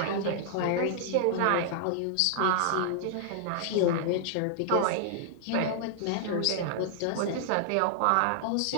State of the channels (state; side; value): different; both; correlation -0.01